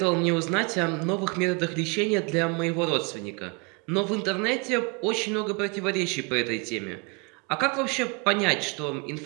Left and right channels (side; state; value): left; quieter; 30.7 dB